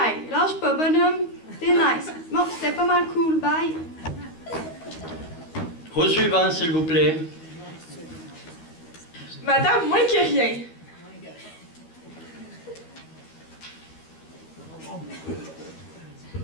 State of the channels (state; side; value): late; right; 13 ms